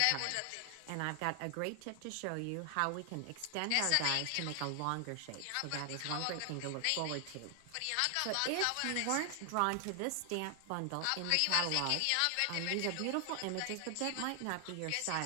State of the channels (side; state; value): both; different; correlation 0.00